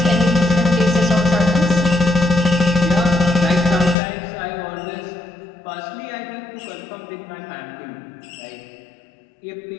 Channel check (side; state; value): right; drops out; at 4.0 s